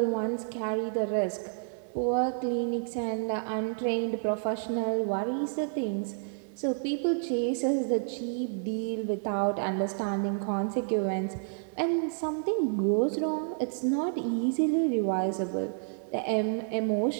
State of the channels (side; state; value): left; silent; 58 dB below the other